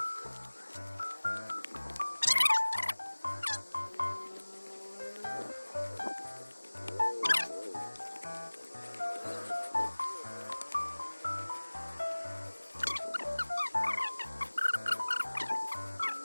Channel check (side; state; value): both; inverted; correlation -1.00